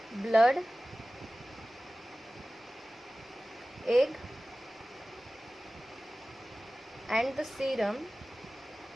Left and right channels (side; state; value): both; normal; correlation 0.97